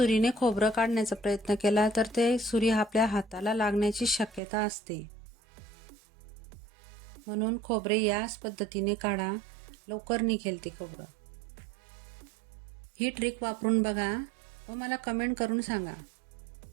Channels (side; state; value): left; drops out; at 4.4 s